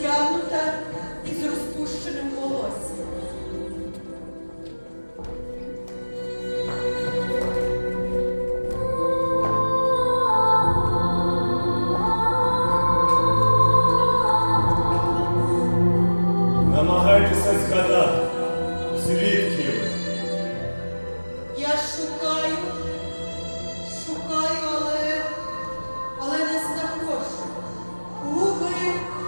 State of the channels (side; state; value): both; inverted; correlation -1.00